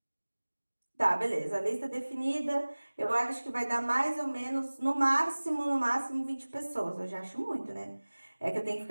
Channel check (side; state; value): both; inverted; correlation -1.00